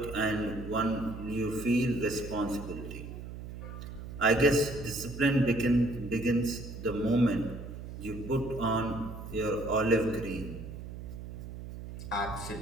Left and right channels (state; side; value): noise; right; hum, 10 dB below the sound